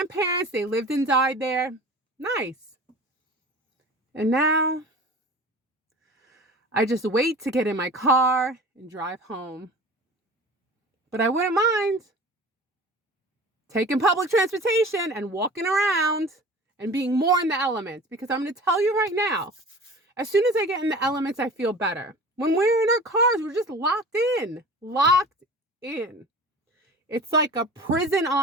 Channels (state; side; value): normal; both; correlation 0.40